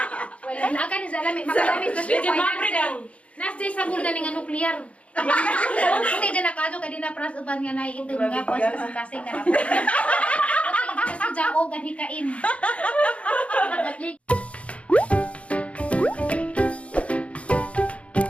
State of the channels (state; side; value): late; right; 0.063 ms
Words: Wala na ka ni sa alam makalami sa Nasday sa bulda nga nuklear. Puti din nakado kay na pras uban nga naiitong nga pas kasing na. Puti sa jao ganhikain.